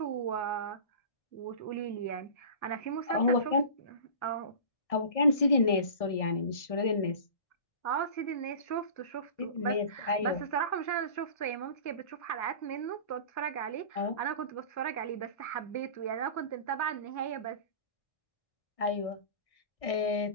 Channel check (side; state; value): right; late; 1.6 ms